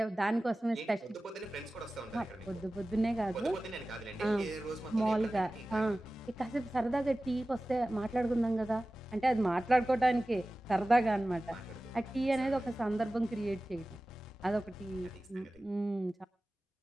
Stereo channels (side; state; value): both; normal; correlation 0.96